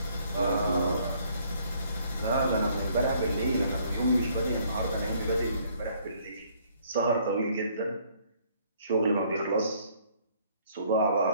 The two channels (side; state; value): both; inverted; correlation -0.63